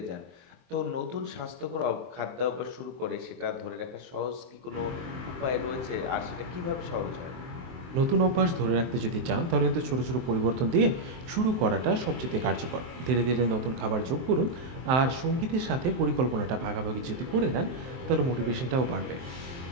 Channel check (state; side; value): late; left; 23 ms